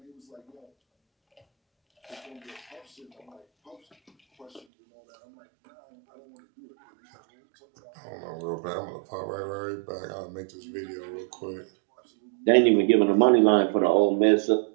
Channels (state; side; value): drops out; left; at 4.7 s